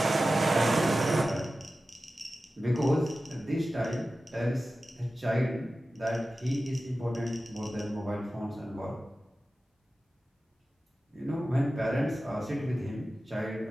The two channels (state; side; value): normal; both; correlation 0.95